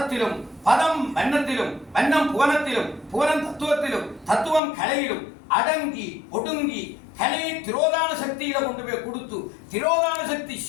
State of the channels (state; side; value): drops out; right; at 4.6 s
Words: பதம் வண்ணத்திலும் வண்ணம் புவனத்திலும் புவனம் தத்துவத்திலும் தத்துவம் கலையிலும் அடங்கி ஒடுங்கி கலையை திரோதான சக்தியில கொண்டு போய் கொடுத்து திரோதான சக்தி